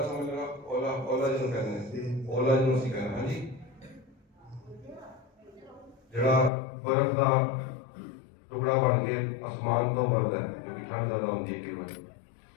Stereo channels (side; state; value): right; drops out; at 6.5 s